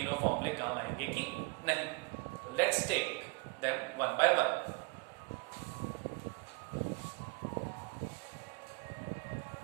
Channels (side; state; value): left; quieter; 29.5 dB